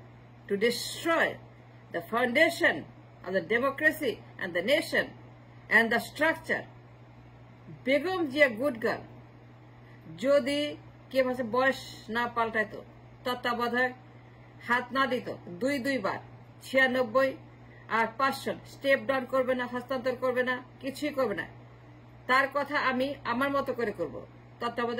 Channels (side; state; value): both; identical; correlation 1.00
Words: to destroy the foundation of the democracy and the nation and the structure Begum Zia good girl যদি কে মাসে বয়স না পাল্টাইতো, তত্ত্বাবধায়ক হাত না দিত 2 বার 96 আর 500 স্টেপ ডাউন করবে না, হস্তান্তর করবে না, কিছুই করবে না। তার কথা আমি আমার মতো করে করব,